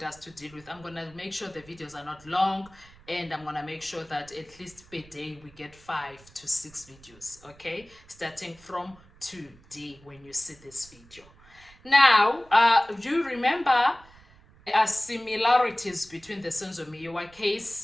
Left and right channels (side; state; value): right; noise; rumble, 25 dB below the sound